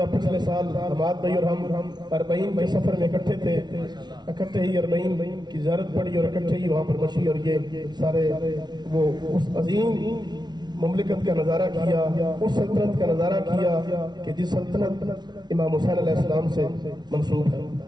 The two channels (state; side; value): late; left; 0.20 ms